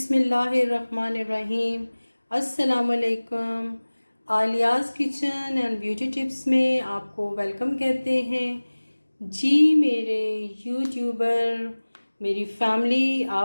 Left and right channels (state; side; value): inverted; both; correlation -1.00